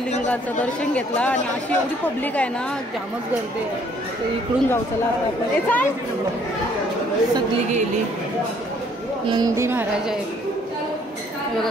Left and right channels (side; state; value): both; normal; correlation 0.63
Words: दर्शन घेतला आणि अशी एवढी पब्लिक आहे ना, जामच गर्दी आहे. तर इकडून जाऊ चला आता आपण. सगळी गेली. नंदी महाराज आहेत बघा